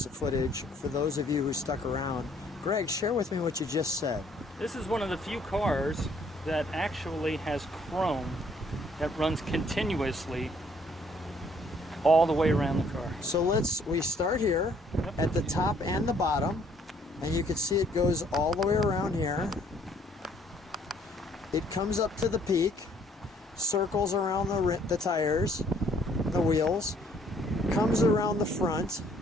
footage for those of you who stuck around. Greg, share with me what you just said. This is one of the few cars that actually has chrome that runs continuously all the way around the car. So we start here at the top and the bottom, and you can see it goes all the way around here. It comes up to the peak, circles around the tires, the wheels, comes around the front,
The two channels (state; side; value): normal; both; correlation 0.63